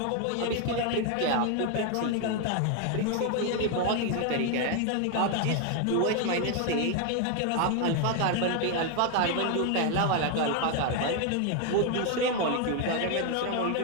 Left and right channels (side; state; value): both; different; correlation 0.01